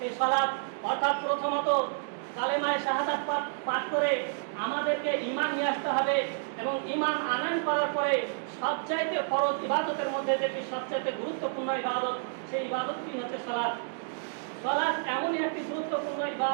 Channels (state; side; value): silent; left; digital silence